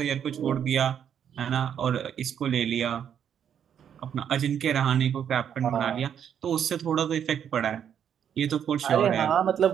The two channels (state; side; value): quieter; left; 8.7 dB